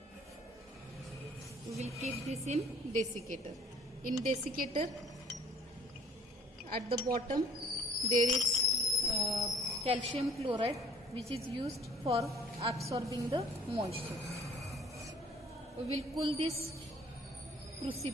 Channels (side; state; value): both; normal; correlation 0.56